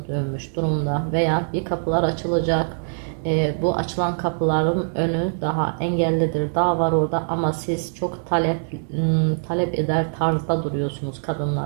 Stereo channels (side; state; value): left; silent; digital silence